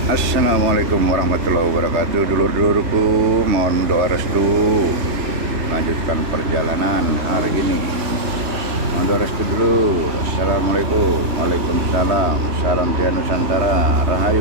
Assalamualaikum warahmatullahi wabarakatuh. Dulur-dulurku, mohon doa restu melanjutkan perjalanan hari ini. Mohon doa restu dulu. Assalamualaikum. Waalaikumsalam. Salam Jaya Nusantara.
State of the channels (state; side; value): late; left; 3.2 ms